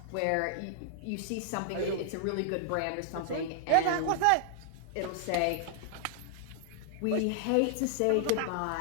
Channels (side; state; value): both; different; correlation -0.01